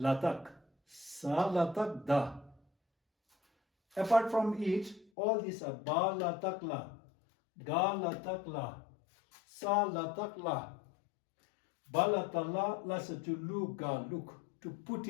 Salatak Da. Apart from it, all these are Ba Latak La, Ga Latak La, Sa Latak La. Balatala lasa to lu ga look, to put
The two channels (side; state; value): right; drops out; at 5.1 s